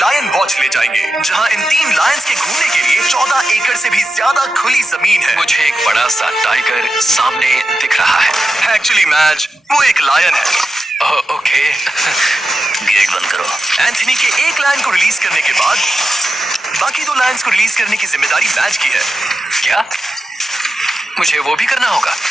वॉच ले जाएंगे, जहां इन 3 लायंस के घूमने के लिए 14 एकड़ से भी ज्यादा खुली जमीन है। मुझे एक बड़ा सा टाइगर सामने दिख रहा है। एक्चुअली मैच वो एक लायन है। ओके। गेट बंद करो। एंथनी के एक लायन को रिलीज करने के बाद बाकी 2 लायंस को रिलीज करने की जिम्मेदारी मैच की है। क्या मुझे वो भी करना होगा?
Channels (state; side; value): normal; both; correlation 0.90